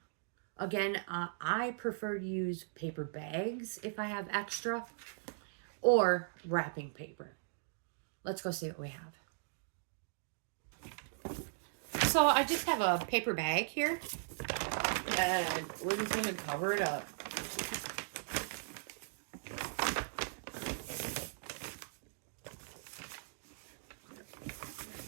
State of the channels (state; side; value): silent; left; digital silence